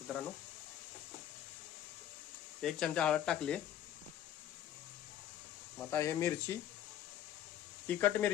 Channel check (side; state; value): right; quieter; 11.2 dB